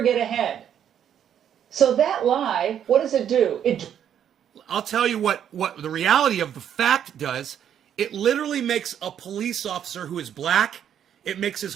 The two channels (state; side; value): quieter; left; 9.4 dB